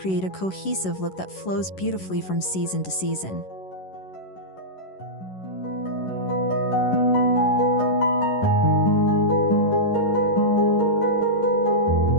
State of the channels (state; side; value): late; right; 11 ms